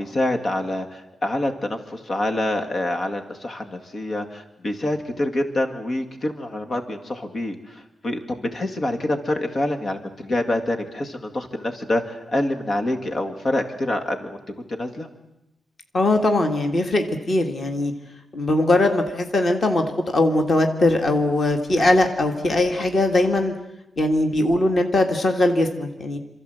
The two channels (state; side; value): normal; both; correlation 0.87